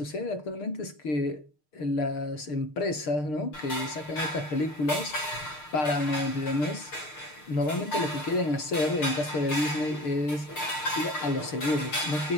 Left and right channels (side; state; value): right; late; 6.6 ms